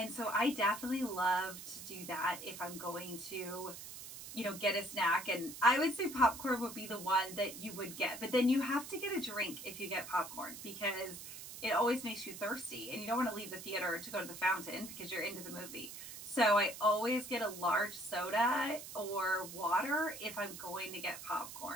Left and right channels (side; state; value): right; noise; hiss, 11 dB below the sound